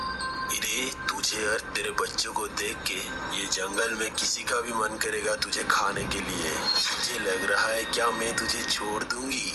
अरे तुझे और तेरे बच्चों को देख के ये जंगल में किसी का भी मन करेगा तुझे खाने के लिए। मुझे लग रहा है क्या मैं तुझे छोड़ दूंगी?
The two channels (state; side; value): identical; both; correlation 1.00